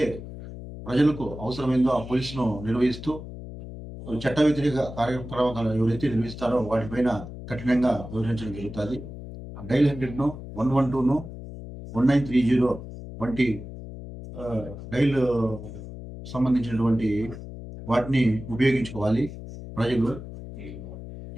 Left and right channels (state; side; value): noise; left; hum, 12 dB below the sound